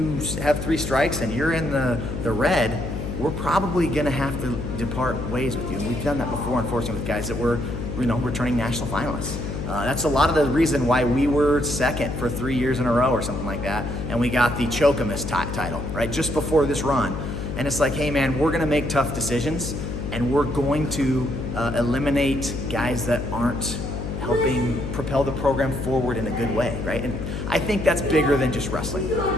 have 3 strikes and you're in the red, we're probably going to have to depart ways with you. And we've done that before, unfortunately, with guys that were, returning national finalists. That's a lot of the reason why we were second for 3 years in a row or something like that, and we got the Chokamus title, right, just before this run. And it's like, hey man, we're gonna make tough decisions, and we're going to eliminate guys that aren't helping propel the program forward in a good way, right? And I think that's bigger than just wrestling.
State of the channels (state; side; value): noise; left; hum, 5 dB below the sound